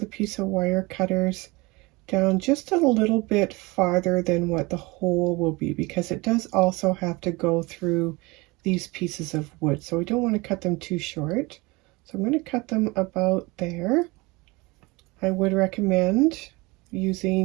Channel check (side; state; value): left; quieter; 24.2 dB